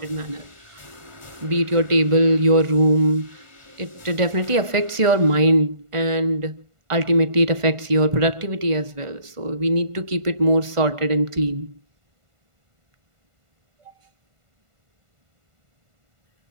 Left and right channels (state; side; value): late; left; 1.5 ms